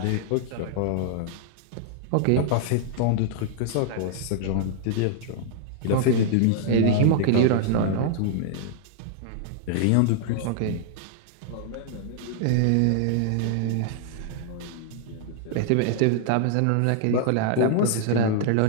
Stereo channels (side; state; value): both; different; correlation -0.01